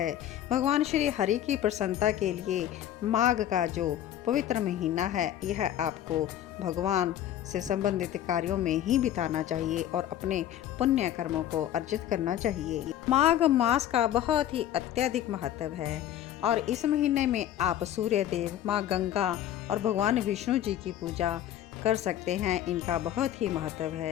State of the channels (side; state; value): right; quieter; 11.6 dB